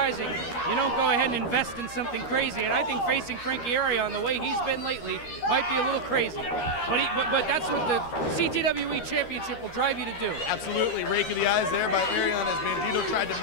you don't go ahead and invest in something crazy. And I think facing Frankie Arion the way he's been lately might be a little crazy. But that's what the CTWE Championship will drive you to do. Absolutely. Rake of the eyes there by Arion as Bandido tried to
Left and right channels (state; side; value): late; right; 13 ms